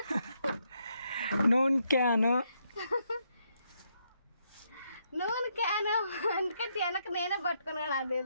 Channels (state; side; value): inverted; both; correlation -0.77